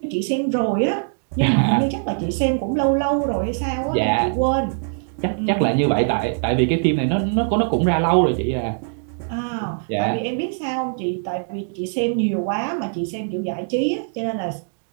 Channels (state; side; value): silent; left; 64 dB below the other